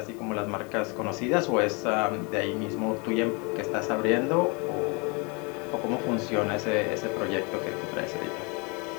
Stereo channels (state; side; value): quieter; right; 31.3 dB